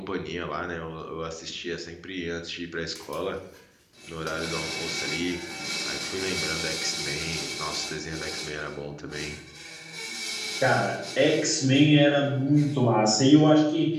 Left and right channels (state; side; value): identical; both; correlation 1.00